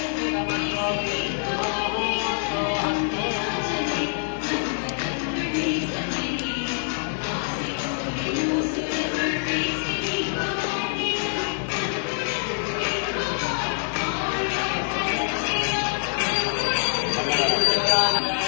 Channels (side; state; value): right; silent; digital silence